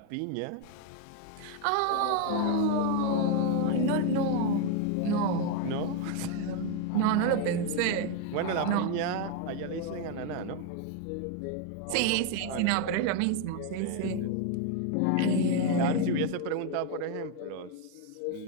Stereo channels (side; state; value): both; different; correlation 0.01